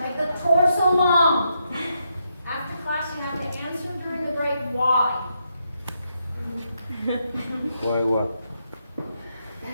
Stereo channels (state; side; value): inverted; both; correlation -0.80